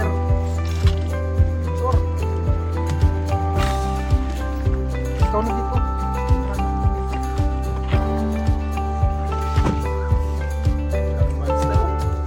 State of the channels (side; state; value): both; identical; correlation 1.00